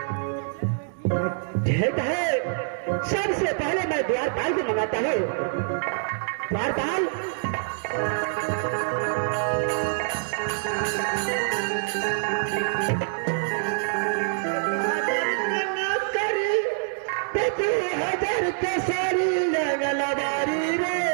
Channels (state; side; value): silent; left; digital silence